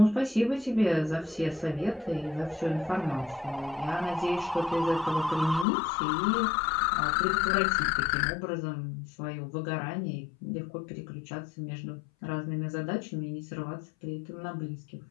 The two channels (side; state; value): right; drops out; at 5.7 s